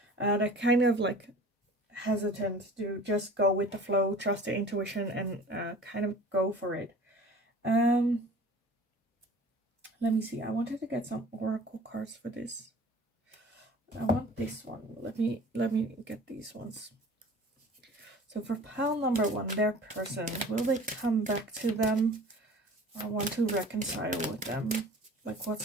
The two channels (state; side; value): normal; both; correlation 0.44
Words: They're kind of like hesitant to just go with the flow, trust the intuition, and kind of go for it. Let me see. I wanted to get some oracle cards for this. I want this one. Let me get these ones. So for pile number 1, their person, will they come back to them? I want to reconcile with them. Like,